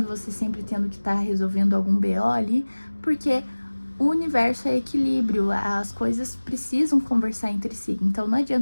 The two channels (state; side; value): inverted; both; correlation -1.00